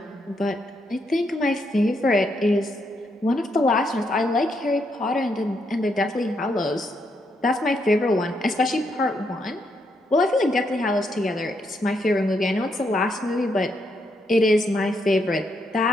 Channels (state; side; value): normal; both; correlation 0.78